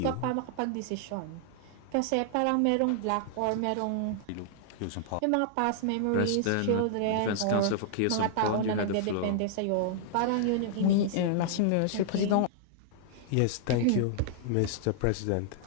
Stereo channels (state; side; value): different; both; correlation -0.01